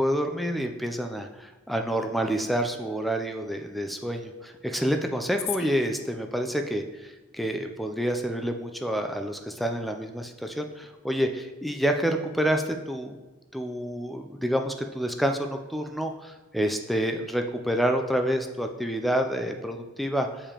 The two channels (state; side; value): normal; both; correlation 0.75